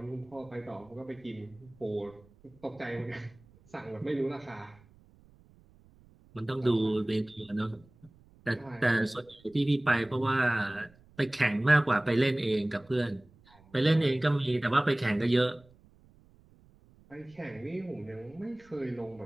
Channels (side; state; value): right; noise; rumble, 28 dB below the sound